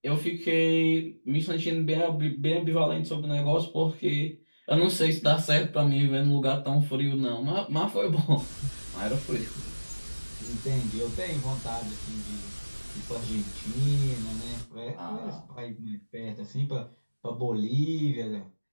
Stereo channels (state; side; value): inverted; both; correlation -1.00